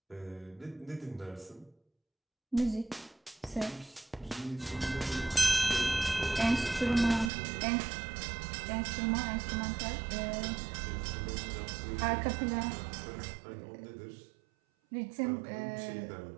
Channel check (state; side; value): drops out; left; at 7.3 s